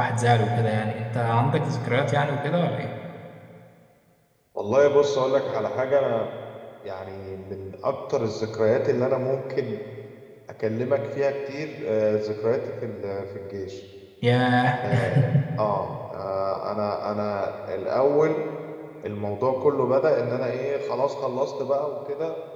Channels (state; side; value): identical; both; correlation 1.00